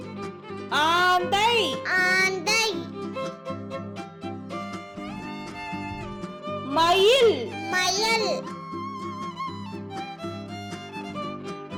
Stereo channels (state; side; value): identical; both; correlation 1.00